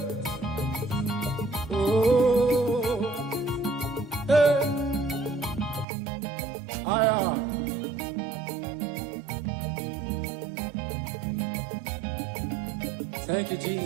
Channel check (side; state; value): left; drops out; at 5.9 s